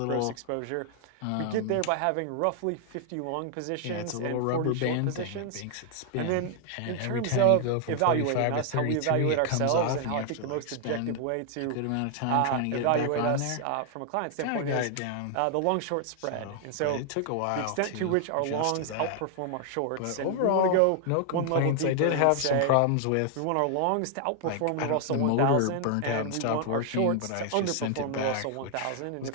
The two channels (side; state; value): both; different; correlation 0.00